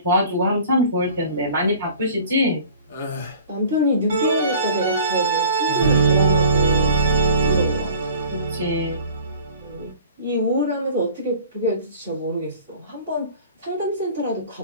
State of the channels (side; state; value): both; inverted; correlation -0.46